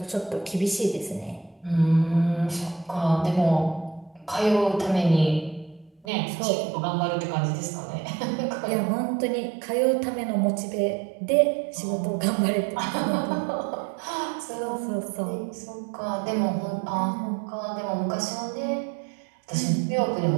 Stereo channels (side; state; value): left; drops out; at 6.1 s